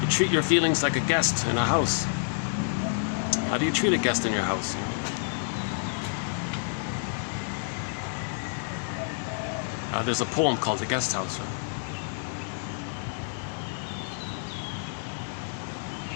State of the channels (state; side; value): silent; right; digital silence